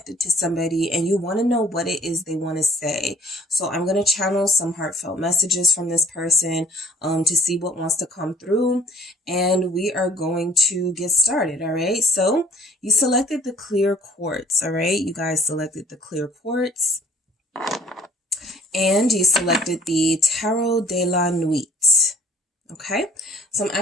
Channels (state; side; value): normal; both; correlation 0.56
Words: to somebody and you want to know what it is they want to say. So I'm going to channel some heartfelt messages from this person to see what wants to come through. And we are going to get started. All right. So you selected the clear quartz. All right. You guys selected the clear quartz. And you selected the Tarot de la Nuit. Okay, so I'm